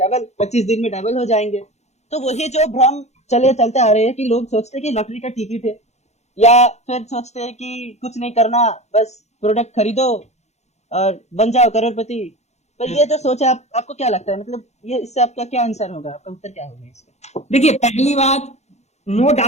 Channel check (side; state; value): right; late; 0.32 ms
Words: 25 दिन में डबल हो जाएंगे। तो वही जो भ्रम चलते आ रहे हैं कि लोग सोचते हैं कि लॉटरी का टिकट है, या फिर सोचते हैं कि कुछ नहीं करना, बस प्रोडक्ट खरीदो और बन जाओ करोड़पति। पर ये जो सोच है, आपको क्या लगता है, मतलब ये इससे आपका क्या आंसर होगा, आपका उत्तर क्या होगा इसका? देखिए, पहली बात, नो